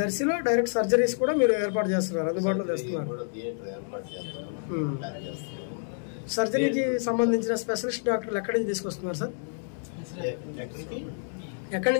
దర్శిలో డైరెక్ట్ సర్జరీస్ కూడా మీరు ఏర్పాటు చేస్తున్నారు, అందుబాటులో తెస్తున్నారు. కూడా థియేటర్ ఏర్పాటు చేస్తున్నాము, ప్లాన్ చేస్తున్నాము. సర్జరీకి సంబంధించిన స్పెషలిస్ట్ డాక్టర్లు ఎక్కడి నుంచి తీసుకొస్తున్నారు సార్? ఎక్కడి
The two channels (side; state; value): right; silent; digital silence